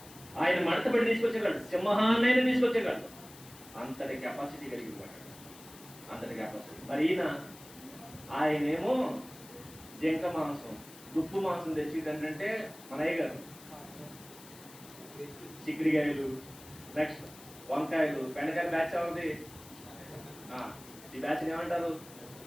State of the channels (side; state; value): left; noise; hiss, 19 dB below the sound